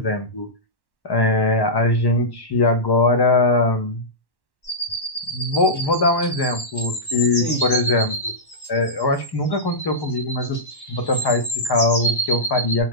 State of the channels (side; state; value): right; late; 1.1 ms